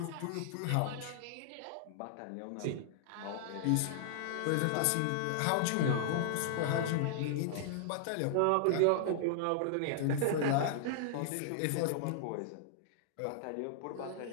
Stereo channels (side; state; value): both; different; correlation -0.01